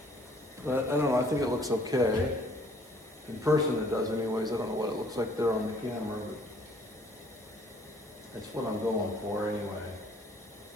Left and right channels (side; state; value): both; normal; correlation 0.59